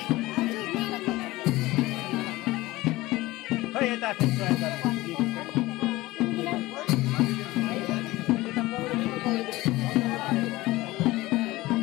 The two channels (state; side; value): quieter; right; 18.9 dB